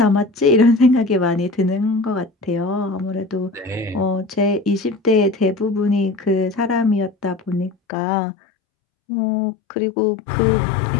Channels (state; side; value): drops out; right; at 7.8 s